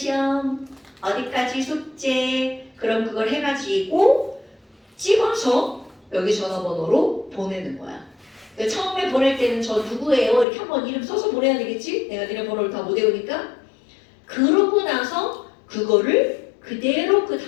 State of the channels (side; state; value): right; drops out; at 10.5 s